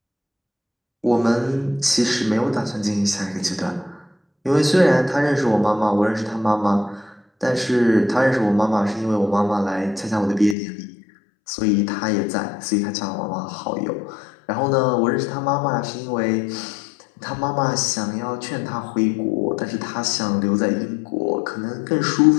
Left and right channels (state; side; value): drops out; right; at 10.6 s